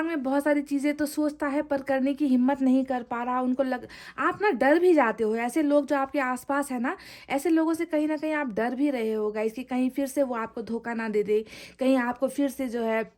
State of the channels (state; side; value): identical; both; correlation 1.00